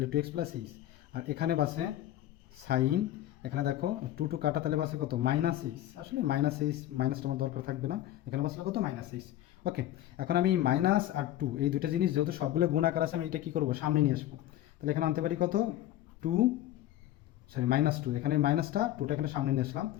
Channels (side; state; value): right; quieter; 13.4 dB